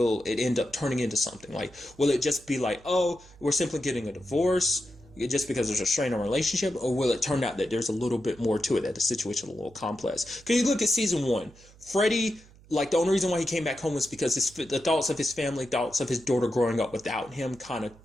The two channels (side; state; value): right; noise; hum, 25 dB below the sound